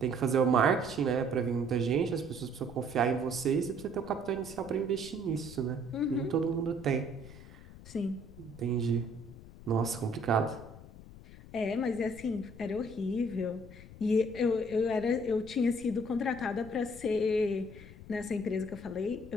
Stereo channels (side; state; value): left; noise; rumble, 17 dB below the sound